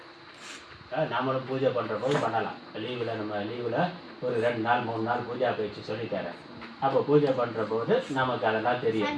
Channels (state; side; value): identical; both; correlation 1.00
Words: நாமளும் பூஜை பண்ணுற போது பண்ணலாம். லீவில் நம்ம லீவில் ஒரு 2 நாள் 3 நாள் பூஜா பயிற்சி சொல்லித்தரேன். அப்போ பூஜை பண்ணுற போது நமக்கு அதெல்லாம் தெரியும்.